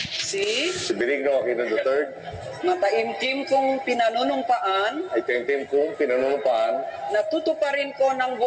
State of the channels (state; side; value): identical; both; correlation 1.00